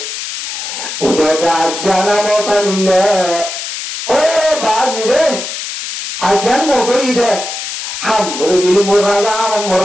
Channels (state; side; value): noise; left; hiss, 6 dB below the sound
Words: ওটা জানা মত নিলে ও বাজি রে আজান মগরি দে হাম বলে দিল মোর